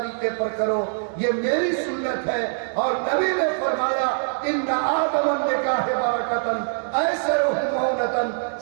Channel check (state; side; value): silent; left; digital silence